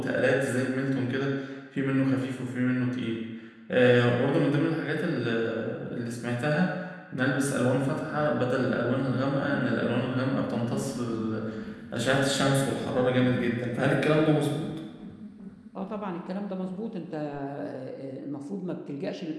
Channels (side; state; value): both; identical; correlation 1.00